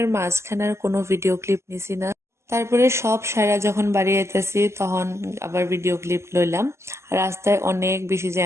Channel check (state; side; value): late; left; 0.13 ms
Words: মাঝখানে আর কোনো ভিডিও ক্লিপ নিছি না। তারপরে সব সারা যখন বাড়ি আইতেছি তখন আবার ভিডিও ক্লিপ লইলাম। আর রাস্তায় অনেক বেশি